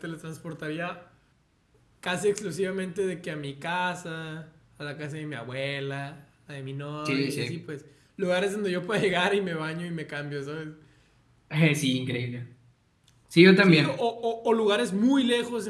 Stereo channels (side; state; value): both; identical; correlation 1.00